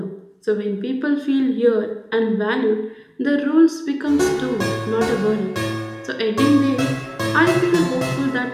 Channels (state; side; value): identical; both; correlation 1.00